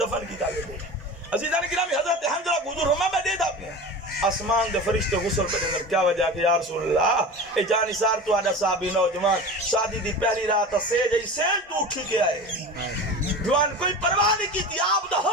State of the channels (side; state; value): both; normal; correlation 0.32